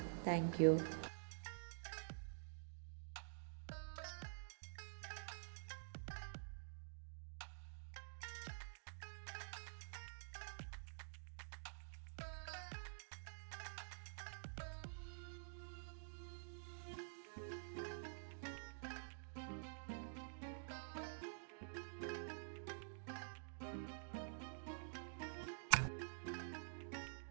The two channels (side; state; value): left; silent; digital silence